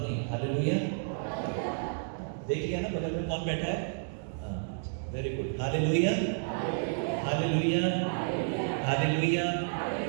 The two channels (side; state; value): left; silent; digital silence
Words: नहीं। हालेलुया। देखिए ना बगल में कौन बैठा है? Very good. Hallelujah, hallelujah, hallelujah.